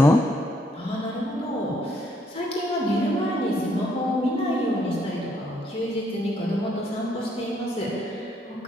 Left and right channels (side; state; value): both; normal; correlation 0.71